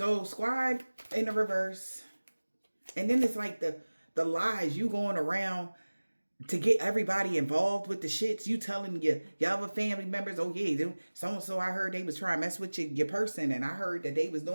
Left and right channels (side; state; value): both; inverted; correlation -1.00